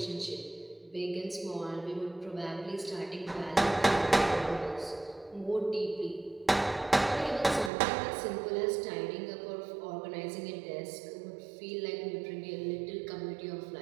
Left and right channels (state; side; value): drops out; left; at 7.7 s